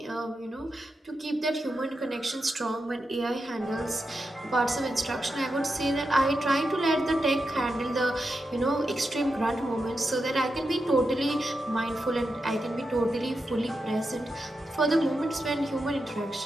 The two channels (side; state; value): both; normal; correlation 0.88